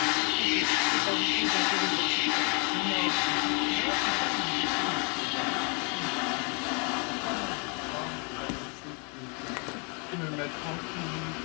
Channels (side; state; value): right; quieter; 35.6 dB